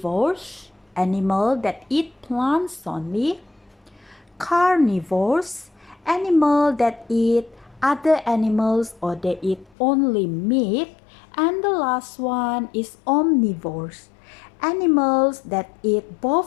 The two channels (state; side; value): drops out; right; at 9.8 s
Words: animals that eat plants only, carnivores, animals that eat other animals or they eat only meat, and the last one is omnivores, animals that eat